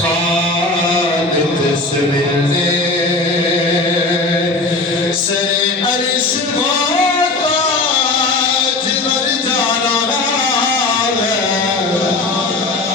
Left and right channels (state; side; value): quieter; right; 3.2 dB